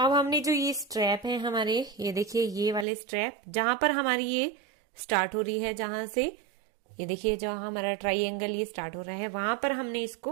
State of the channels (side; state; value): left; drops out; at 2.9 s